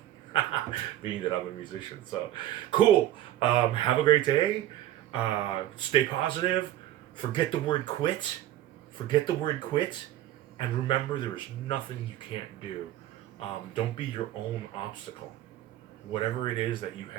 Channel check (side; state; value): left; quieter; 13.4 dB